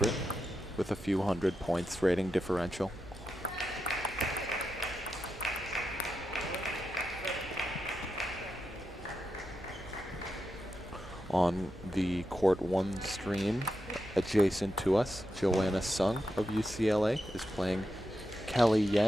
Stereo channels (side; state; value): both; normal; correlation 0.87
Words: with a few hundred points rating differential. On the Court 1 stream, adjacent to us, Joanna Sung of UCLA is playing Kelly